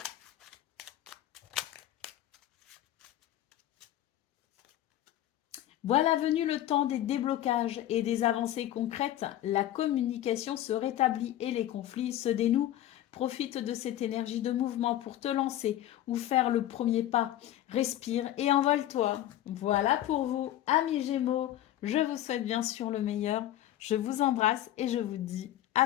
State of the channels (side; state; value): right; quieter; 13.0 dB